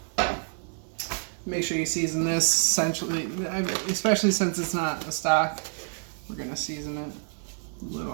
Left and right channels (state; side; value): silent; left; 56 dB below the other